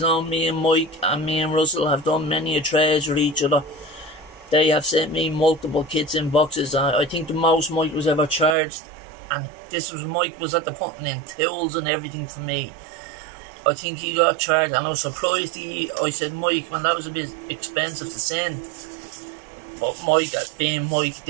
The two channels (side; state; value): left; drops out; at 8.6 s